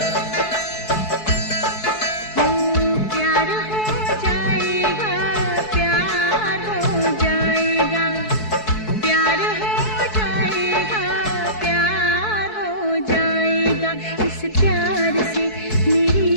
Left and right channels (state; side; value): late; right; 4.6 ms